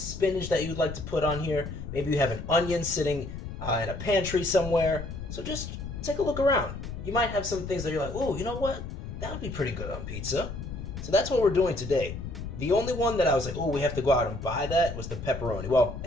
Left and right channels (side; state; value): left; noise; rumble, 9 dB below the sound